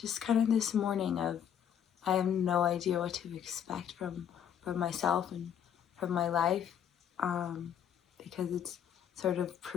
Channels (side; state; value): right; quieter; 8.9 dB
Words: kind of this morning of I have no idea what to expect from myself and from my life, because it's sort of